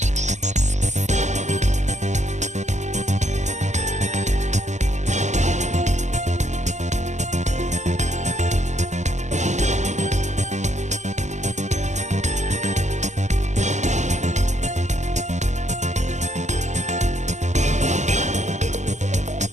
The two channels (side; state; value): left; late; 0.34 ms